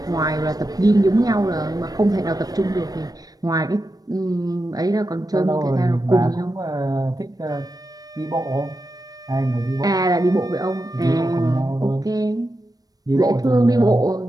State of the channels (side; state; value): left; late; 0.18 ms